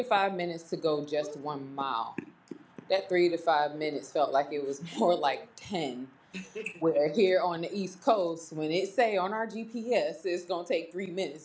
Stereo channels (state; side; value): identical; both; correlation 1.00